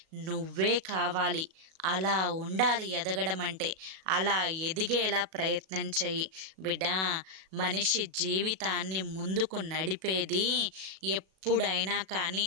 నువ్వే కావాలి. అలా ఉండాలి ఎదగడం అంటే. అలా ఎదిగేలా ప్రయత్నం చెయ్యి బిడ్డ. మనిషి జీవితాన్ని ముందుకు నడిపేది ఎప్పుడైనా కానీ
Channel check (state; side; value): late; left; 37 ms